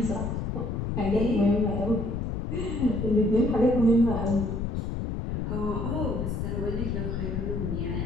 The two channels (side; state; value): left; noise; rumble, 2 dB below the sound